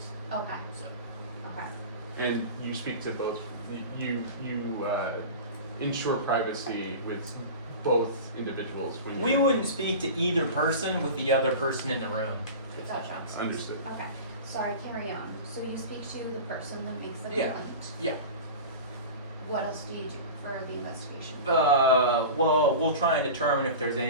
Okay, So okay. And you speak to both, you ensure privacy with both individuals when we you're- wouldn't speak to either person with the other person in the room. if that Gotcha. makes sense. Understood. Okay, sorry, carry on. So you speak to the person that makes the Yeah. complaint. Yeah. What else do you do for the investigation? Well, we'll try and determine if there's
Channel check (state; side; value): inverted; both; correlation -0.32